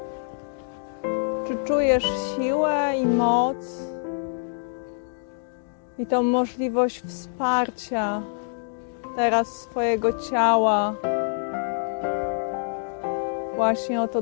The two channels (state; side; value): silent; right; digital silence